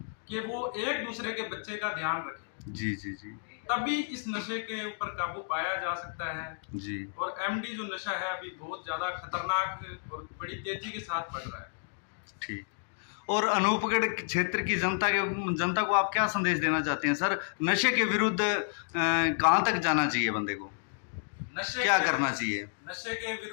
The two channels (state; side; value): silent; right; digital silence